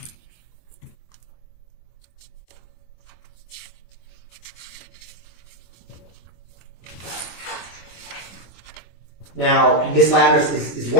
Now, Ms. Ladders, is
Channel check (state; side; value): late; right; 25 ms